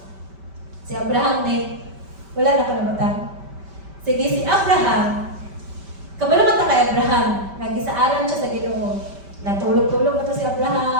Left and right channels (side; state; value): left; late; 5.1 ms